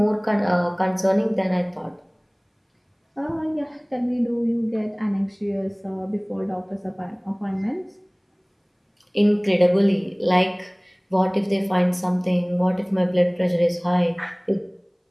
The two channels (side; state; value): both; identical; correlation 1.00